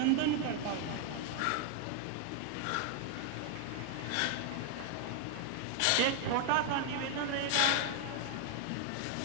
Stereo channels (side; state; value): both; different; correlation 0.00